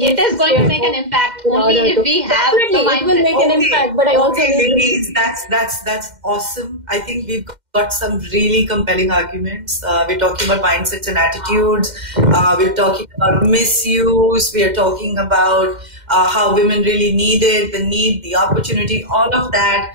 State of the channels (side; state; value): left; late; 2.1 ms